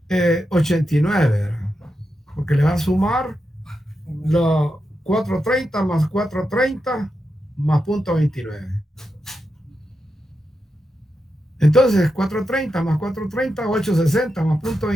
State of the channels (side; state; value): both; normal; correlation 0.87